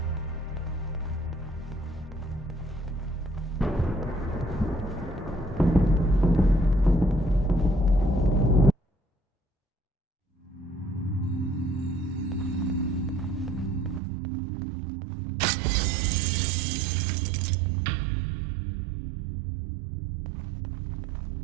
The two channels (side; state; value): left; drops out; at 14.0 s